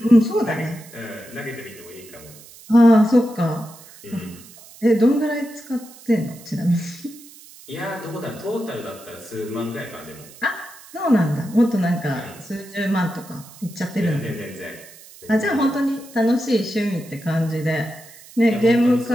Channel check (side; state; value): right; noise; hiss, 20 dB below the sound